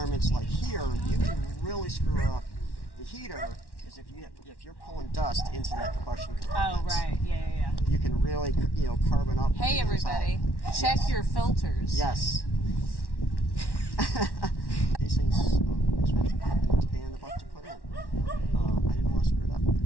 like here, you can really screw up the heater. Is if you're pulling dust into that combustion compartment. Oh, right. Yeah. You can really, carbon up. Hey, everybody. Check your filters. Yes. These things expensive and the buck to put in. I didn't want to screw it up.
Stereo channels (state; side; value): late; right; 1.1 ms